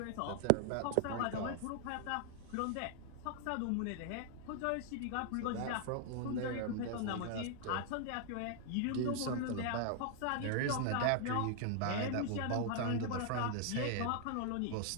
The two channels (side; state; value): both; different; correlation 0.00